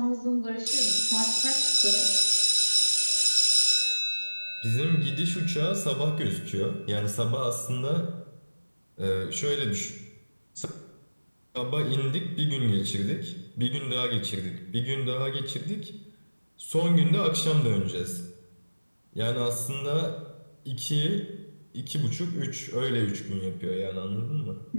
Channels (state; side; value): inverted; both; correlation -1.00